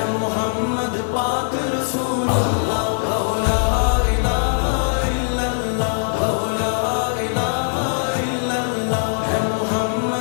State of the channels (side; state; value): right; silent; 65 dB below the other